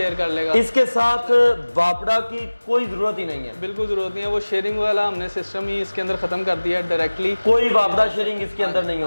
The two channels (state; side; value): inverted; both; correlation -1.00